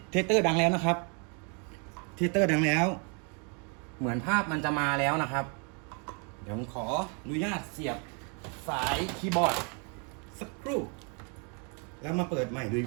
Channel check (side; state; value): left; quieter; 36.5 dB